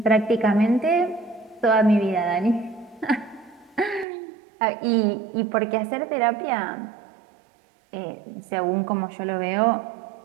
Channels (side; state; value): left; drops out; at 4.0 s